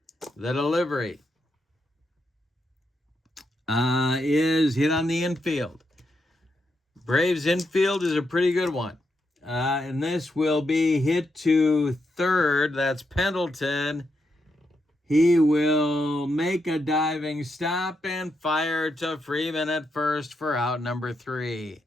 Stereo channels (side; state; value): both; normal; correlation 0.82